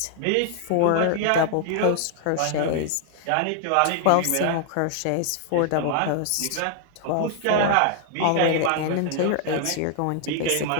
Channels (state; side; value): different; both; correlation 0.00